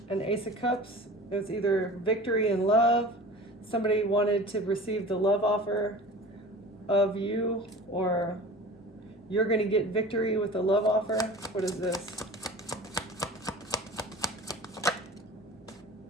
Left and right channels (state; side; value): normal; both; correlation 0.38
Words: An Ace of Cups. It was either victory in love. Somebody wanted to receive the love offer of you, or you're going to get victory with the love offer. What is this?